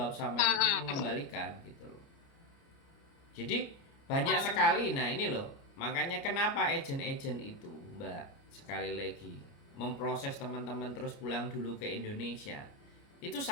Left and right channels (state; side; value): late; right; 29 ms